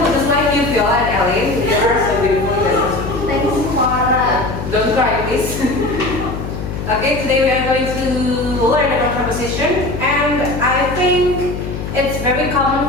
just like you, Viola and Ellen. You are so beautiful. Thanks, Farah. Don't cry, please. Okay, today we are going to learn about preposition, and I think it's very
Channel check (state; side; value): noise; left; hum, 6 dB below the sound